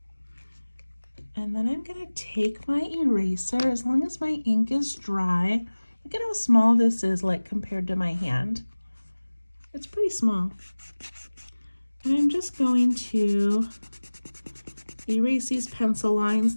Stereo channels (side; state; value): both; inverted; correlation -1.00